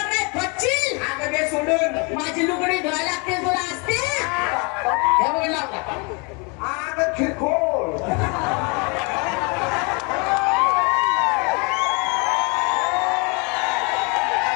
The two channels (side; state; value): right; quieter; 32.1 dB